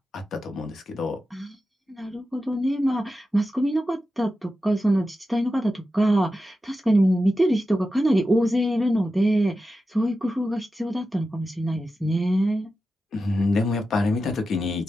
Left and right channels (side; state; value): both; normal; correlation 0.91